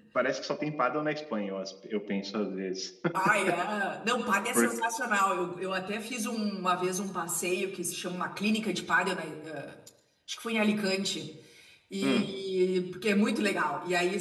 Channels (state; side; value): identical; both; correlation 1.00